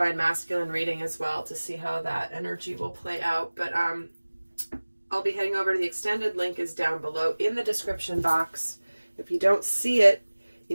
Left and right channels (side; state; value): both; inverted; correlation -1.00